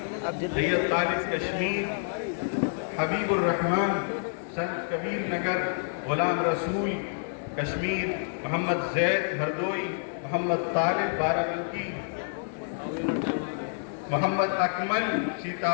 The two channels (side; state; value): right; silent; digital silence